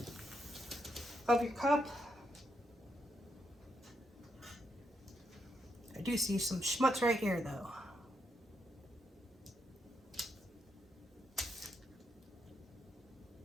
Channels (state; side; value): normal; both; correlation 0.80